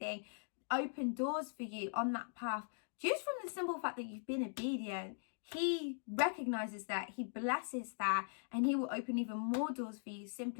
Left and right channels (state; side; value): silent; right; digital silence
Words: open doors for you on that path. Just from the simple fact that you've been obedient, He recognizes that, He blesses that, and He will open even more doors for you